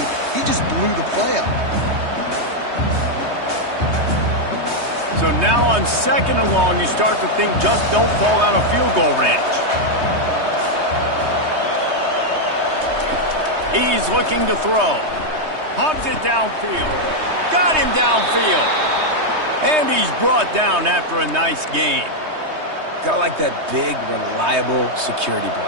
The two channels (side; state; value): left; late; 3.2 ms